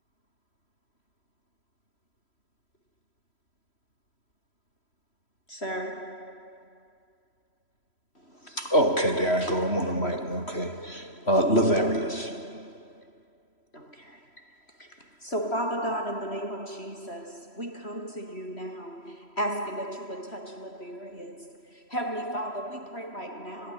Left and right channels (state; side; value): late; right; 3.1 ms